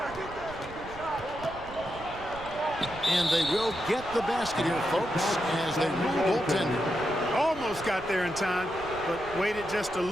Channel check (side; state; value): right; noise; rumble, 15 dB below the sound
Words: And they will get the basket here, folks, as they rule goaltender. Almost got there in time, but waited just a